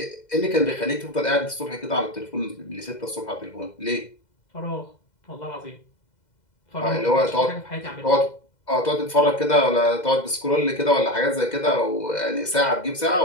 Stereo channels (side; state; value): right; late; 2.0 ms